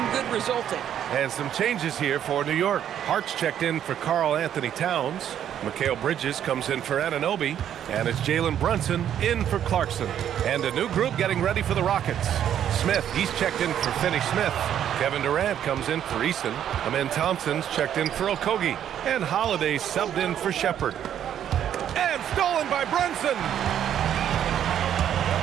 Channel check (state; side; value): quieter; left; 10.0 dB